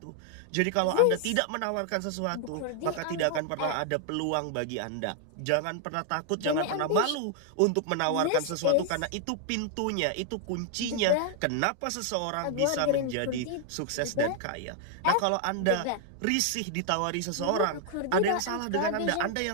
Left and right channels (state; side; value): different; both; correlation 0.00